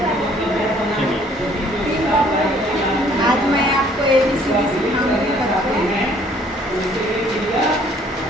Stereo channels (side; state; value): both; normal; correlation 0.60